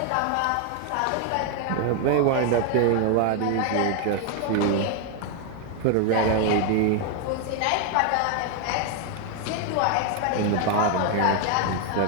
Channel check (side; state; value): both; different; correlation 0.01